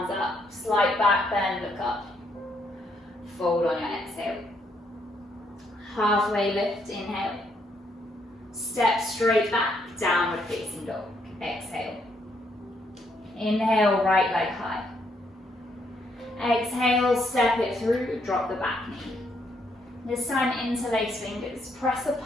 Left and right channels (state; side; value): normal; both; correlation 0.73